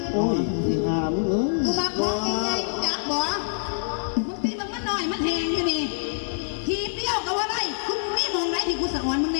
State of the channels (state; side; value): silent; right; digital silence